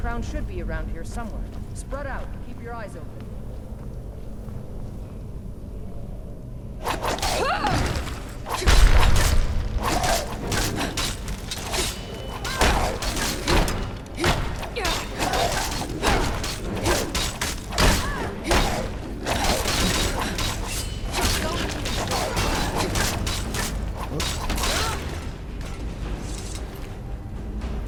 should be around here somewhere. Spread out. Keep your eyes open. Ah!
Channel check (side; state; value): both; identical; correlation 1.00